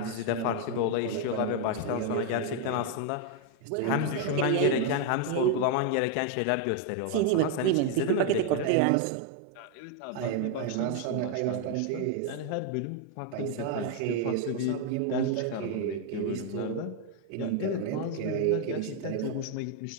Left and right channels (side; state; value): both; different; correlation 0.01